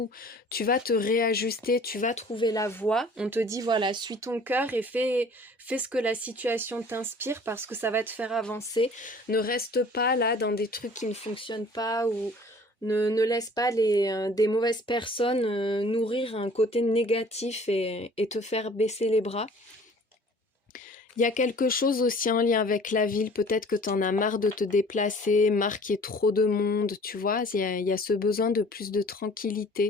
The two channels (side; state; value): both; normal; correlation 0.50